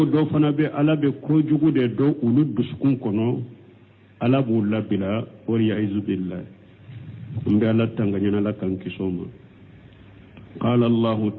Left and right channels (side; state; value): both; identical; correlation 1.00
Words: do fana be ala be ko jugude do ulu dusukun kono ala bu labila wal ya'id billah mbe ala tanganya la kan kisoma قال الله